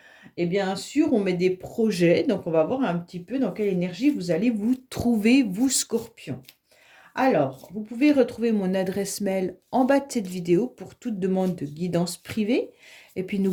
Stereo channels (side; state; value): both; identical; correlation 1.00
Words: Et bien sûr, on met des projets, donc on va voir un petit peu dans quelle énergie vous allez vous trouver, vous Scorpion. Alors, vous pouvez retrouver mon adresse mail en bas de cette vidéo pour toute demande de guidance privée. Et puis,